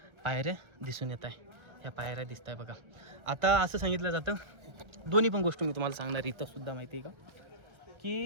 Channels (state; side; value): late; left; 1.3 ms